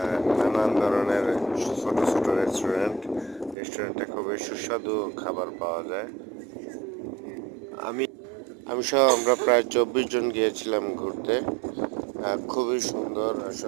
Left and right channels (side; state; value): left; drops out; at 3.6 s